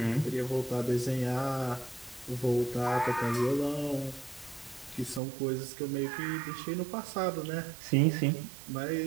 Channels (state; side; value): drops out; left; at 5.2 s